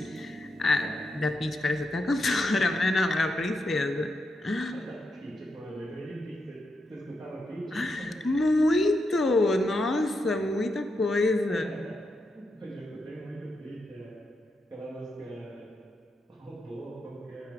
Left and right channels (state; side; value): normal; both; correlation 0.84